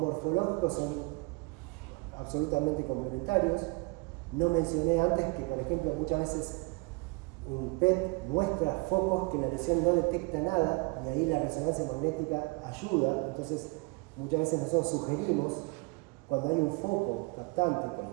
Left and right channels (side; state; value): left; quieter; 28.0 dB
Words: son absolutamente complementarios. No mencioné antes que, por ejemplo, muchas veces un PET muestra focos que la lesión no detecta nada y ahí la resonancia magnética ayuda. Entonces, muchas veces nosotros sugerimos, cuando hay un foco captante, con